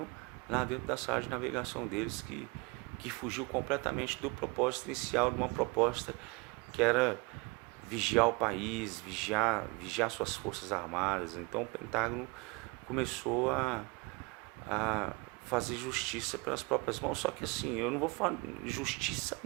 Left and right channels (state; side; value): quieter; left; 27.3 dB